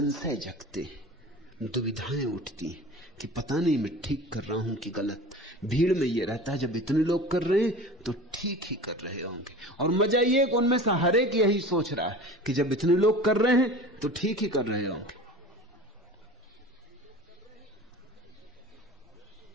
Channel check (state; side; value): normal; both; correlation 0.37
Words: जगते, दुविधाएं उठती कि पता नहीं मैं ठीक कर रहा हूं कि गलत। भीड़ में ये रहता है जब इतने लोग कर रहे हैं तो ठीक ही कर रहे होंगे। और मजा ये कि उनमें से हर एक यही सोच रहा है कि जब इतने लोग कर रहे हैं तो ठीक ही कर रहे होंगे।